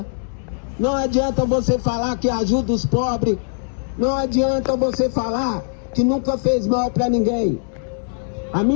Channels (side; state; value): right; silent; digital silence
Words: Não adianta você falar que ajuda os pobres. Não adianta você falar que nunca fez mal para ninguém. A